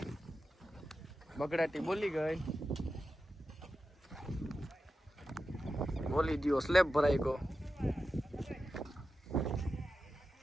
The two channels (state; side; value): normal; both; correlation 0.91